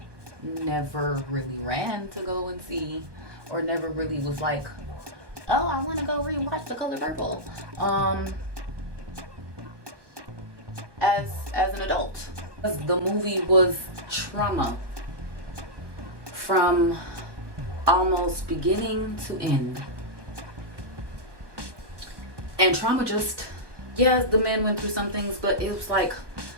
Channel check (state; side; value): late; left; 1.2 ms